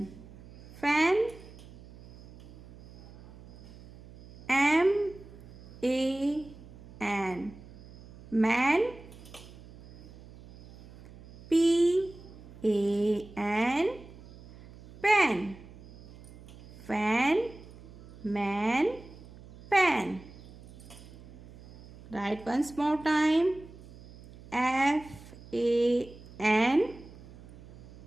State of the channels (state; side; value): noise; right; hum, 19 dB below the sound